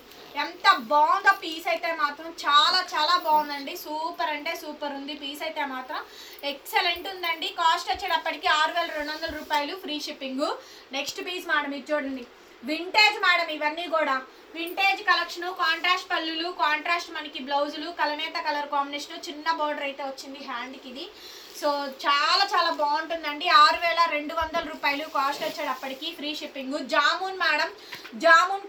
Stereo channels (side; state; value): both; identical; correlation 1.00